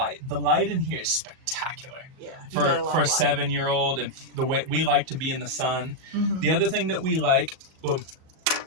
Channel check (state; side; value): late; left; 37 ms